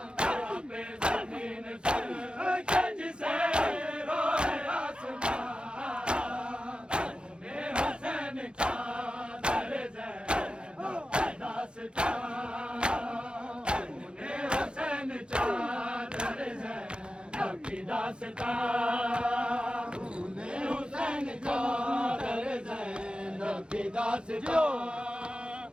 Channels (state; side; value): late; left; 0.053 ms